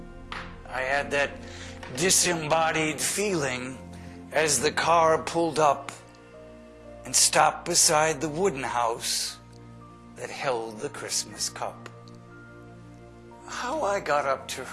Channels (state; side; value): identical; both; correlation 1.00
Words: I had that disembodied feeling as the car pulled up and stopped beside the wooden house that held the Christmas cup. How I got up to